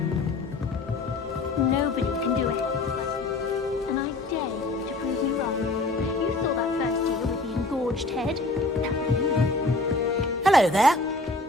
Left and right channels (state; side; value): quieter; right; 3.1 dB